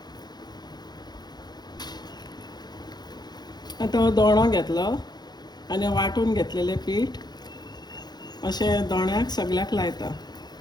आतां हो दोणो घेतलो आनी वांटून घेतलेलें पीठ अशें दोण्याक सगळ्याक लायता.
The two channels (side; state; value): right; late; 0.20 ms